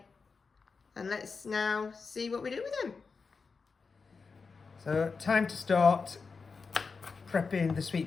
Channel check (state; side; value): quieter; right; 4.8 dB